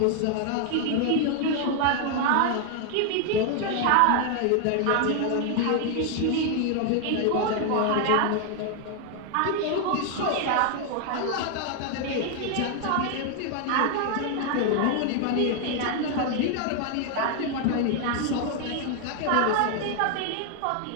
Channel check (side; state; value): both; different; correlation 0.00